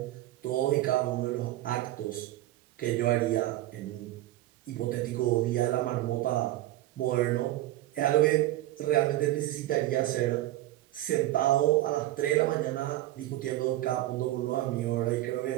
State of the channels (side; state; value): left; quieter; 15.4 dB